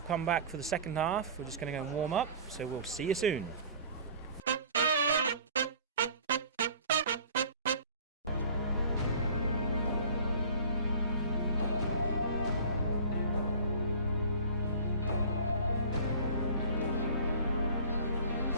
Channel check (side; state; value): both; inverted; correlation -0.43